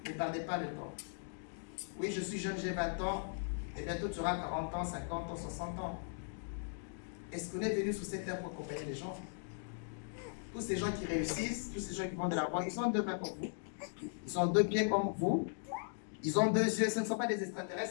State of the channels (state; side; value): silent; right; digital silence